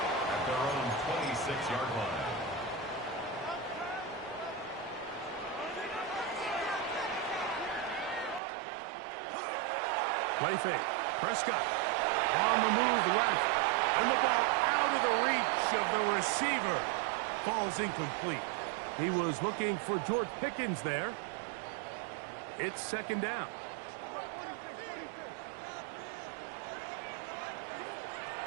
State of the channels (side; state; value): left; drops out; at 8.4 s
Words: at their own 26-yard line. Play fake. Prescott on the move left. And the ball out of the reach of the receiver. Falls incomplete. He was looking for George Pickens there. It's second down.